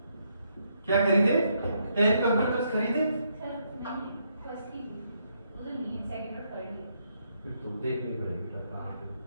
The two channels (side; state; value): both; inverted; correlation -0.76